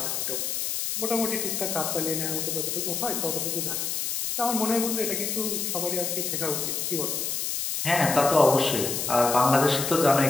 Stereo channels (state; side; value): noise; left; hiss, 2 dB below the sound